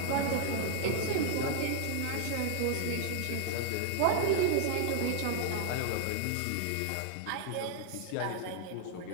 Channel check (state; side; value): different; both; correlation 0.00